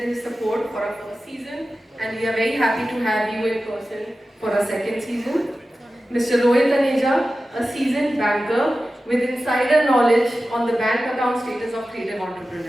support for our first season. And we are very happy to have you in person for our second season. Mr. Rohit Aneja, a seasoned banker with insider knowledge on the bank account status of creative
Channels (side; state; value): both; normal; correlation 0.94